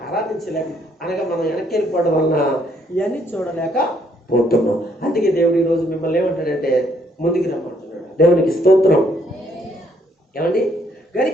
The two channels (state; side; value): normal; both; correlation 0.69